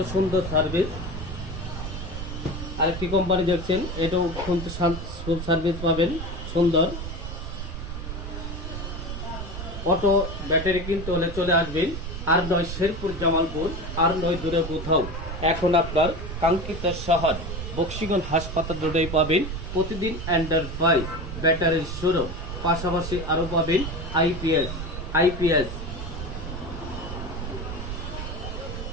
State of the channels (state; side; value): noise; right; rumble, 7 dB below the sound